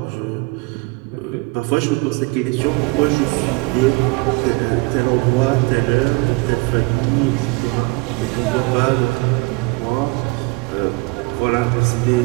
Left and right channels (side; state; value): left; quieter; 26.1 dB